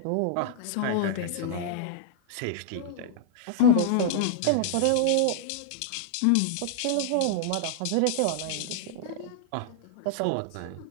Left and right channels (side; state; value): both; different; correlation -0.01